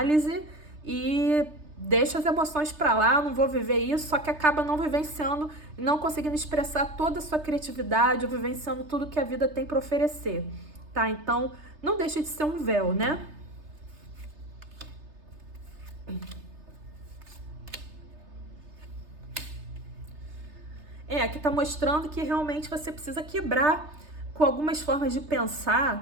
e deixa as emoções para lá, não vou viver isso, só que acaba não vivenciando, não conseguindo expressar toda a sua criatividade, ou vivenciando tudo que a vida tem para oferecer, tá? Então, não deixa de ser um véu, né? Aqui tá mostrando que realmente você precisa quebrar com algumas formas de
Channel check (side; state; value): left; late; 3.3 ms